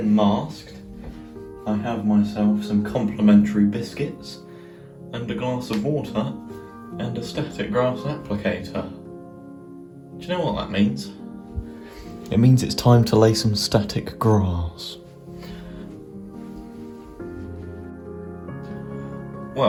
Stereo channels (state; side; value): identical; both; correlation 1.00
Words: masked. I have myself some complimentary biscuits and a glass of water and a static grass applicator. Do you know what that means? It means it's time to lay some static grass.